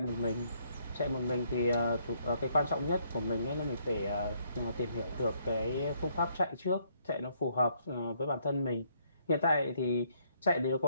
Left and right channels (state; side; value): inverted; both; correlation -0.70